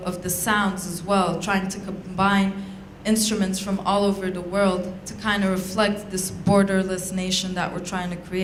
the sounds as well, trying to combine instruments from all over the world to kind of reflect this borderless nation that we're trying to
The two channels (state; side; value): identical; both; correlation 1.00